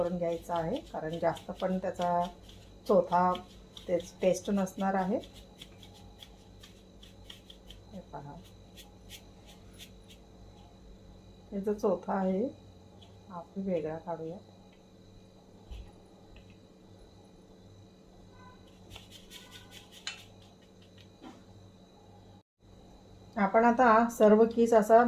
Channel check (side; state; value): both; identical; correlation 1.00